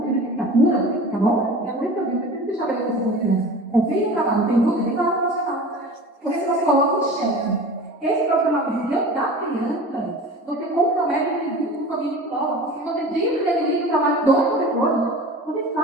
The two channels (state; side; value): normal; both; correlation 0.37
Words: de licenciatura, tá bom? É muito que eu digo, eu preciso estabelecer essa confiança. Confie no trabalho, tem dúvida, tem que falar com o profissional. Porque se você coloca o chefe, esse profissional de direito da criança, você compromete o indivíduo com família e prova. Porque você diz que ele o trabalho do professor, vocês